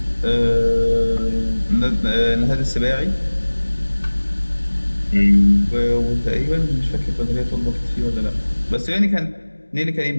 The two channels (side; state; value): both; inverted; correlation -1.00